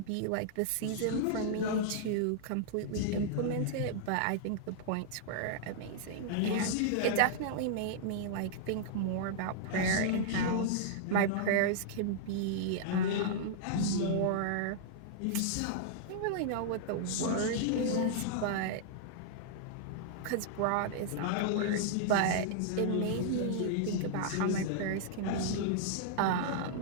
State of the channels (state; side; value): different; both; correlation -0.01